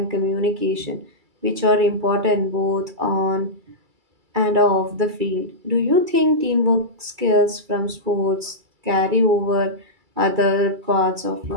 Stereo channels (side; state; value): left; late; 2.3 ms